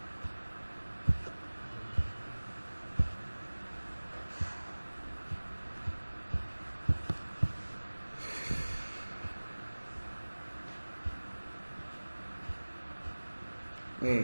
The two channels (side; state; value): both; inverted; correlation -1.00